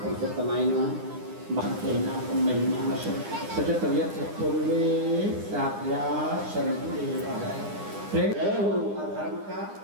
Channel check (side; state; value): left; late; 9.9 ms